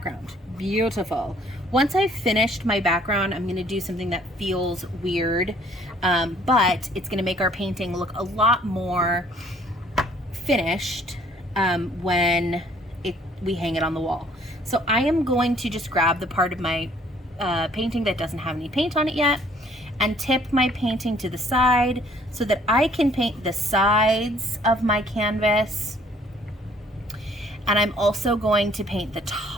Beautiful. Once I've finished my background, I'm gonna do something that feels weird, but it's gonna make our painting look a lot more finished when we hang it on the wall. So I am going to just grab the part of my painting that doesn't have any paint on it yet and tip my painting to the side so that I can paint the sides of my canvas. And I'm also going to paint the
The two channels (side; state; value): both; normal; correlation 0.60